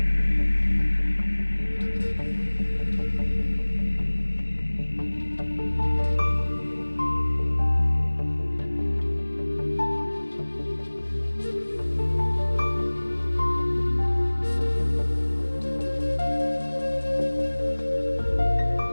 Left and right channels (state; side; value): inverted; both; correlation -1.00